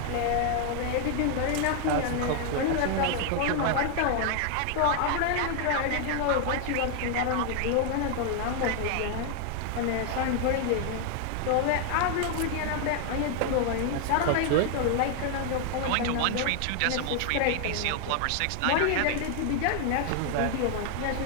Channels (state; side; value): different; both; correlation 0.00